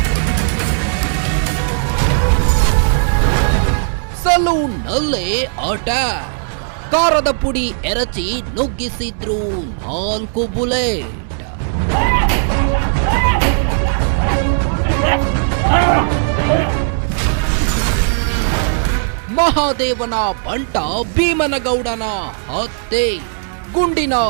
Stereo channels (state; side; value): silent; left; digital silence